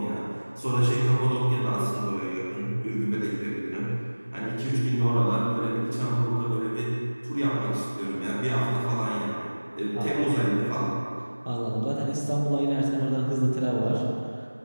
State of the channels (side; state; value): both; inverted; correlation -1.00